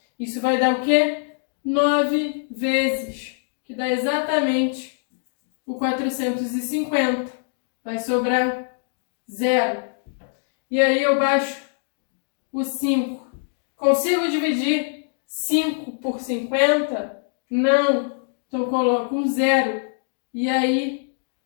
Isso vai dar o quê? 9 vezes, que dá exatamente o 450. Vai sobrar 0. E aí eu baixo o 5. Consigo dividir 5 por 50? Não. Então eu coloco um 0. E aí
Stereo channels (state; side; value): silent; right; digital silence